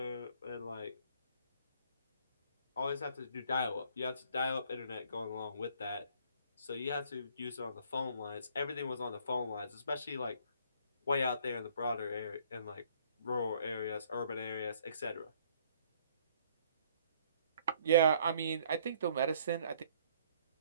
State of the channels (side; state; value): both; inverted; correlation -0.61